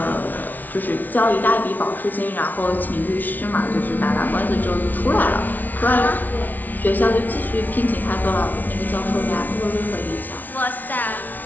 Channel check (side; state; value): right; late; 0.082 ms